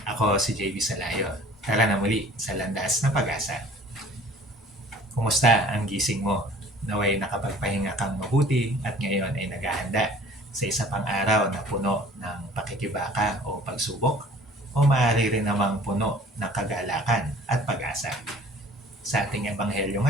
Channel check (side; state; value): both; normal; correlation 0.50